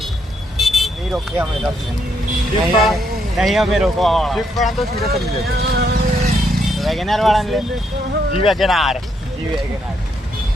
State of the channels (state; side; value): normal; both; correlation 0.75